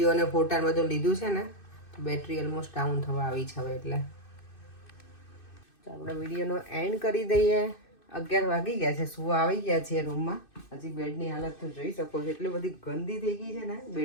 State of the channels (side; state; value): right; late; 2.6 ms